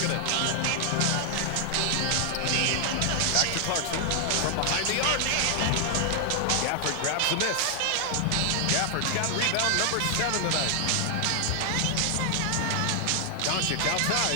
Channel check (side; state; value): both; different; correlation 0.00